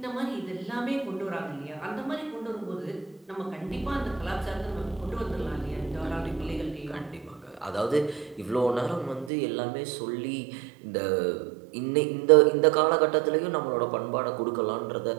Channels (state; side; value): drops out; left; at 9.3 s